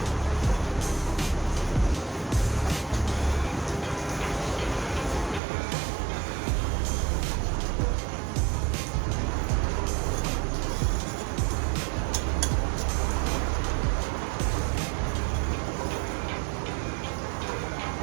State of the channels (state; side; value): drops out; left; at 5.4 s